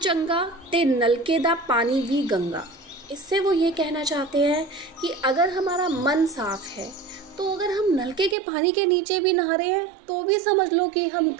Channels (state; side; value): drops out; left; at 8.3 s